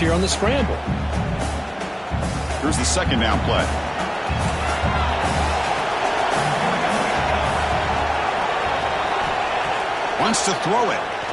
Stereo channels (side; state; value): both; identical; correlation 1.00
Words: on the scramble. Here's the 2nd down play. Wants to throw it.